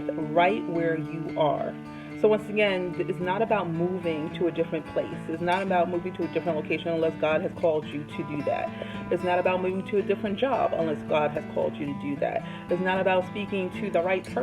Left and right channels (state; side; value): identical; both; correlation 1.00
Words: right where you are. So once again, it's not about moving to a different place. It's not about moving to a different location unless God has called you to do that. It's not about moving to a different job unless God has called you to do that. It's not about speaking to the right